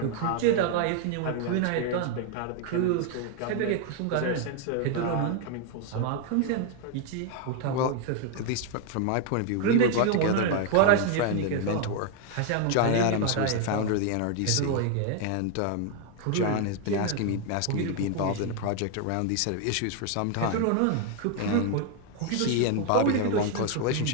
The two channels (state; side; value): different; both; correlation 0.01